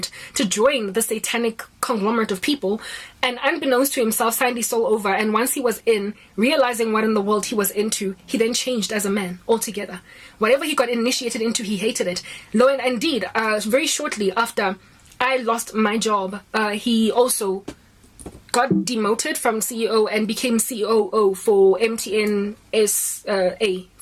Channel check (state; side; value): identical; both; correlation 1.00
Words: to join the satanic conglomerate of people, and unbeknownst to himself signed his soul over. And once he was in, realizing what in the world he was into, he then changed as a man altogether. Whatever he got initiated into, he hated it. Lo and indeed, very shortly after I lost my job, he also got demoted from CEO and became COO for MTN